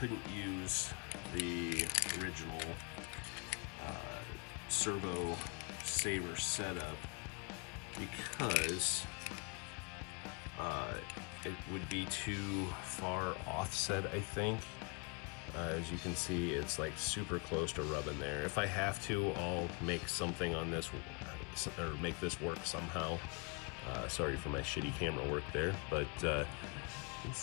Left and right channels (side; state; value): right; quieter; 33.9 dB